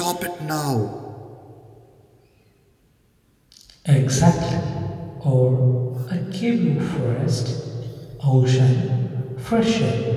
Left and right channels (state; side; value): identical; both; correlation 1.00